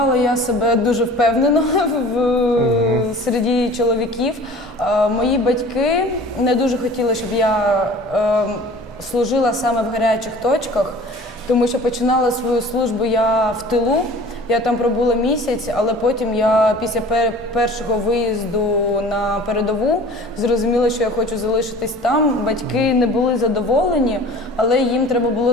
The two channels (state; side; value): normal; both; correlation 0.44